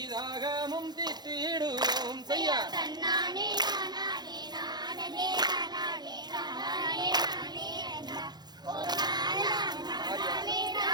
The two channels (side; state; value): left; late; 0.20 ms